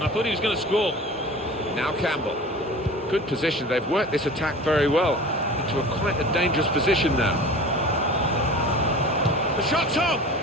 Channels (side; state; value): both; normal; correlation 0.38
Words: I thought he was going to score. Now Campbell. Good position. They've worked this attack very well into quite a dangerous position now. The shot's on!